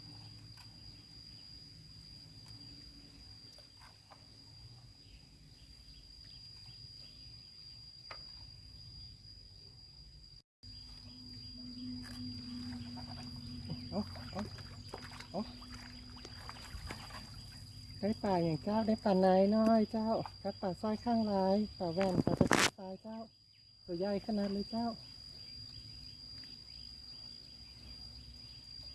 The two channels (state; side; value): identical; both; correlation 1.00